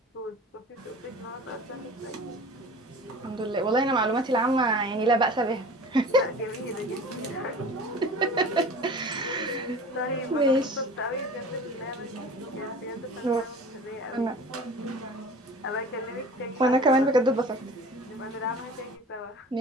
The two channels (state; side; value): normal; both; correlation 0.40